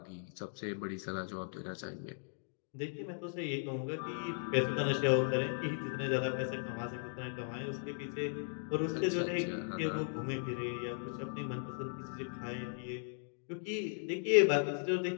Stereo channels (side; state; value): right; silent; digital silence